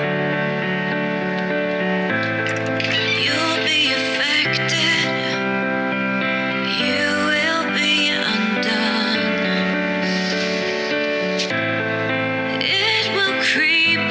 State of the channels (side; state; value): both; identical; correlation 1.00